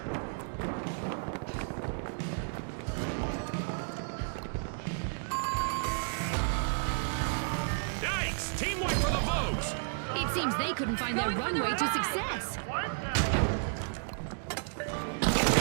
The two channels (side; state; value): left; silent; digital silence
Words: Yikes! Team wipe for the Vogues. It seems they couldn't find their Going for the runway to ride. success.